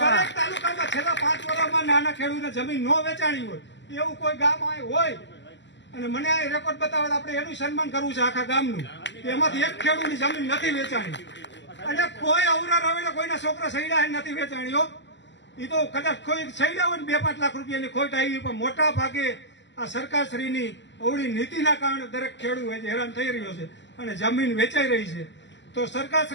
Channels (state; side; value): late; right; 0.53 ms